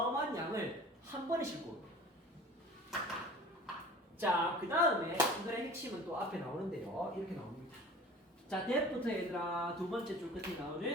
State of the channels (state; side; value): normal; both; correlation 0.43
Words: 양을 한 번에 싣고. 자, 그 다음에 이거의 핵심은 또 앞에 나오는데요. 이렇게 나옵니다. 자, that부터 얘들아 두 번째 줄 끝에